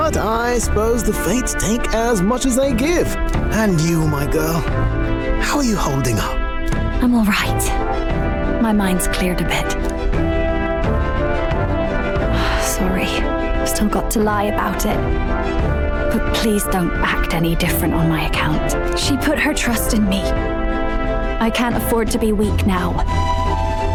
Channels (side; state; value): both; identical; correlation 1.00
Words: I suppose the fates take as much as they give. And you, my girl, how are you holding up? I'm all right. My mind's cleared a bit. Sorry, still got to lie about it. But please don't act any different on my account. She put her trust in me. I can't afford to be weak now.